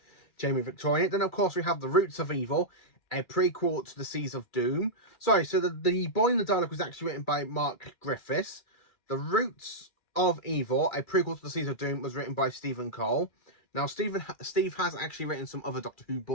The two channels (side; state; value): right; late; 2.3 ms